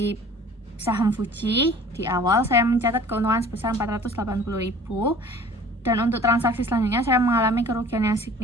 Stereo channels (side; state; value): both; normal; correlation 0.47